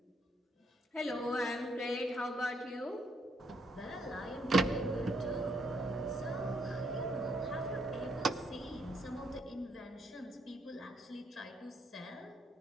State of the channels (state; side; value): normal; both; correlation 0.72